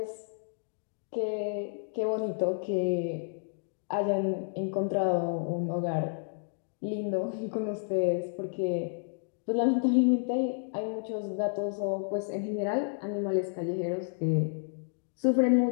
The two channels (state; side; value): silent; right; digital silence